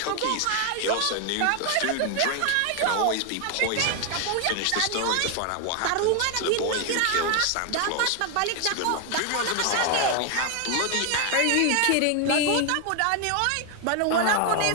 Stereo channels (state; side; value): different; both; correlation 0.00